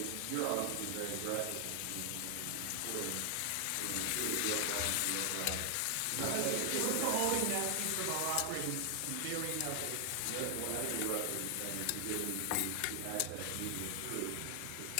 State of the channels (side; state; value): both; different; correlation 0.00